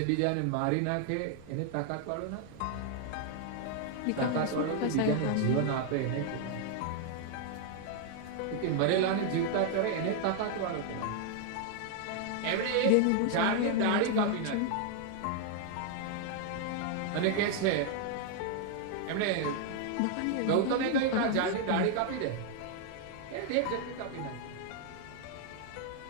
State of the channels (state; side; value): different; both; correlation 0.00